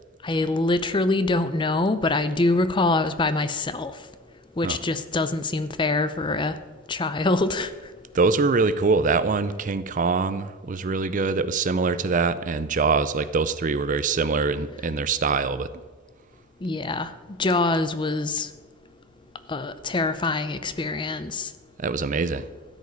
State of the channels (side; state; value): both; normal; correlation 0.31